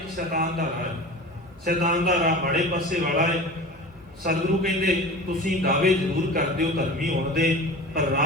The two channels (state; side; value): normal; both; correlation 0.35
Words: ਸ਼ੈਤਾਨ ਦਾ ਰਾਹ ਹੈ। ਸ਼ੈਤਾਨ ਦਾ ਰਾਹ ਮਾੜੇ ਪਾਸੇ ਵਾਲਾ ਹੈ। ਸਤਿਗੁਰੂ ਕਹਿੰਦੇ ਤੁਸੀਂ ਦਾਅਵੇ ਜ਼ਰੂਰ ਕਰਦੇ ਹੋ ਧਰਮੀ ਹੋਣ ਦੇ, ਪਰ